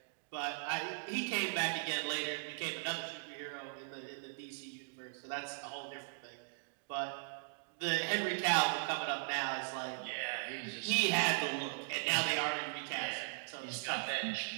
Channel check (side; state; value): left; silent; digital silence